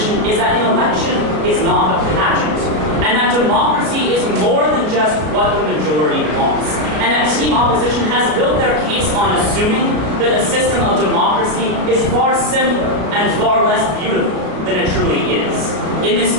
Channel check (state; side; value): late; left; 33 ms